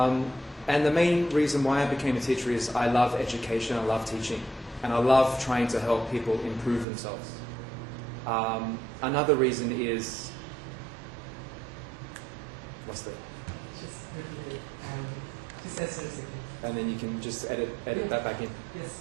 the main reason why I became a teacher is I love education, I love teaching. and I love trying to help people improve themselves. Another reason is, what's that? Just repeat it. Just answer a second. And then you can just edit that back in. Yes.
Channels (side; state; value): left; drops out; at 6.9 s